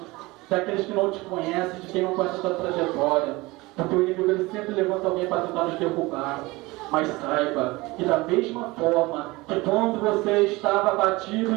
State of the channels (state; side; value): quieter; left; 22.0 dB